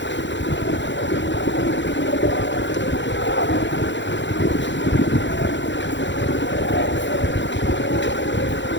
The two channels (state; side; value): late; right; 0.53 ms